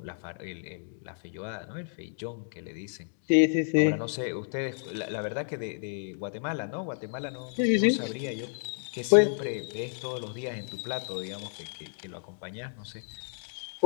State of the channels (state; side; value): silent; right; digital silence